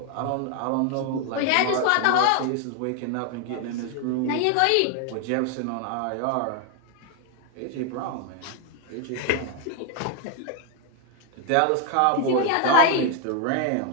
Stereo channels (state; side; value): different; both; correlation 0.00